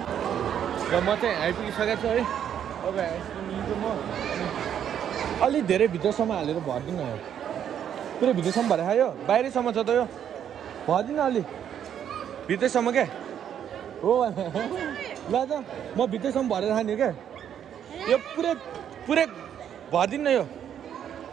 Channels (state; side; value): quieter; left; 9.3 dB